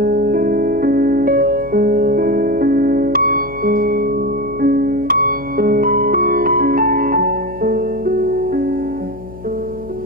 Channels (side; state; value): left; noise; hum, 16 dB below the sound